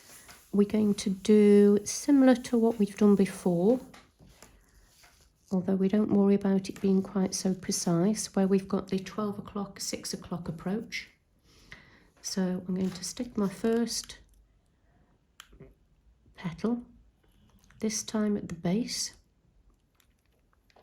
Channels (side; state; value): both; identical; correlation 1.00